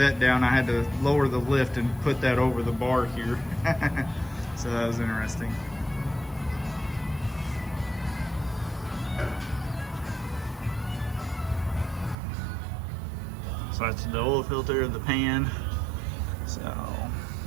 down, I had to lower the lift and put that over the bar here. So that was interesting. So that's the oil filter, the pan. So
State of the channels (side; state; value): left; drops out; at 12.2 s